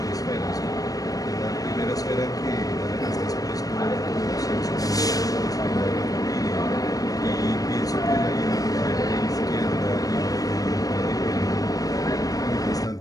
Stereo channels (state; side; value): late; right; 0.18 ms